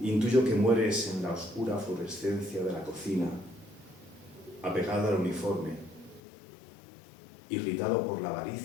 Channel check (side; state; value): right; drops out; at 6.2 s